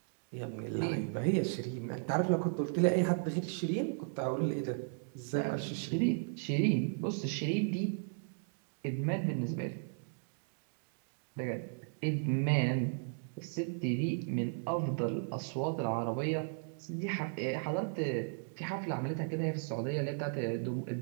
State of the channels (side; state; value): left; silent; digital silence